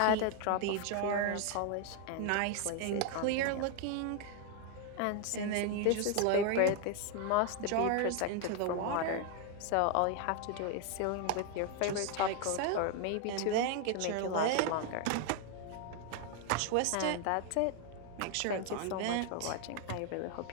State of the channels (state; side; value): different; both; correlation 0.00